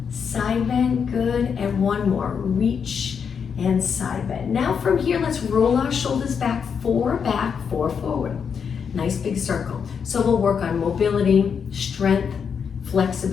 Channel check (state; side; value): quieter; right; 6.7 dB